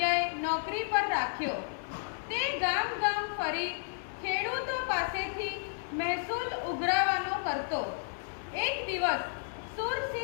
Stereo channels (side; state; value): right; silent; 56 dB below the other